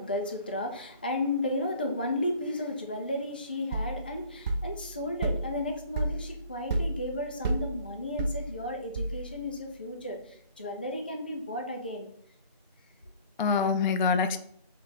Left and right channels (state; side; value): inverted; both; correlation -0.51